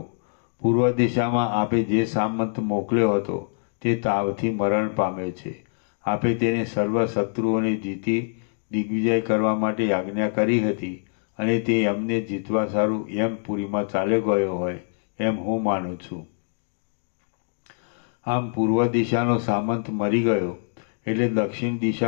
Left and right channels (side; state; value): right; silent; digital silence